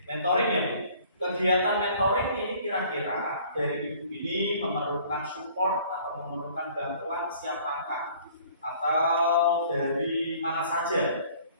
mentoring ya Bu. Kegiatan mentoring ini kira-kira dari Ibu ini memerlukan support atau memerlukan bantuan siapakah? Atau dari mana saja?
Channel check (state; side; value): inverted; both; correlation -0.54